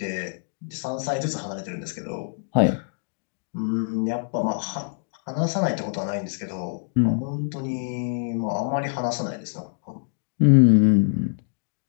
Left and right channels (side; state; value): right; silent; digital silence